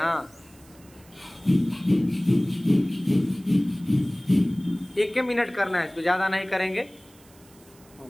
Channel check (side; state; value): right; noise; hiss, 27 dB below the sound